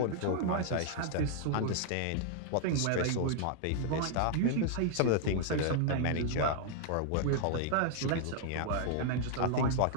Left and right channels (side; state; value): both; different; correlation 0.00